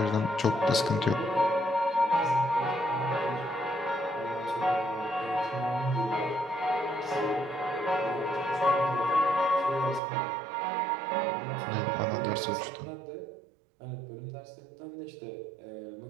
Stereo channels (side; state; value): left; drops out; at 10.0 s